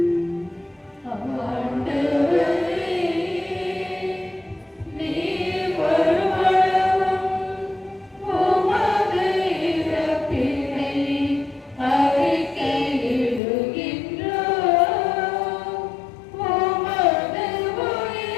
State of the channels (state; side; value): drops out; right; at 13.4 s